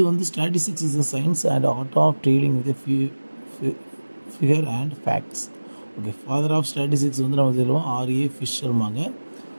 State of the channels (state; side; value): inverted; both; correlation -1.00